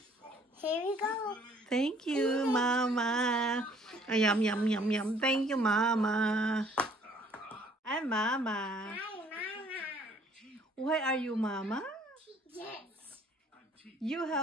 Here we go. Thank you, Mama. Yum. Thank you, Mama. I'm Mama. Hi, Mama. Why are you Mama? Yes. You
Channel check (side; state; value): both; normal; correlation 0.60